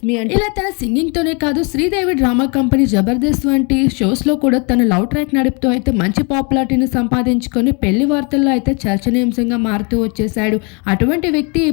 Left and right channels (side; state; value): right; quieter; 32.9 dB